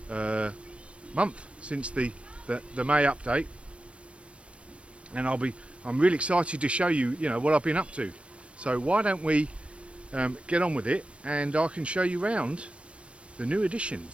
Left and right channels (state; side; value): late; left; 0.061 ms